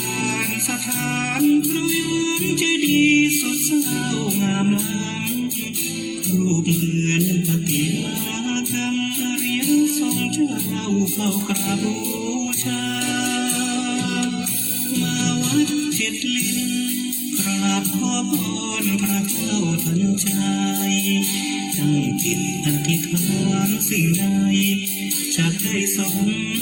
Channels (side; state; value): both; identical; correlation 1.00